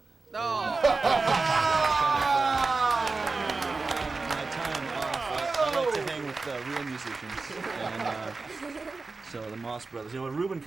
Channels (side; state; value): left; quieter; 3.9 dB